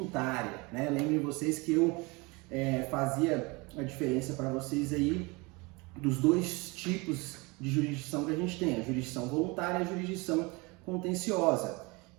né? Lembrem vocês que eu fazia a diferença para vocês aí dos dois tipos de jurisdição que a gente tem, a jurisdição voluntária e a jurisdição contenciosa.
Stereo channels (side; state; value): left; quieter; 26.3 dB